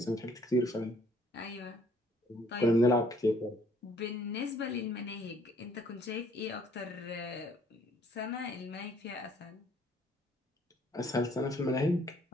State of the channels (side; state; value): both; normal; correlation 0.62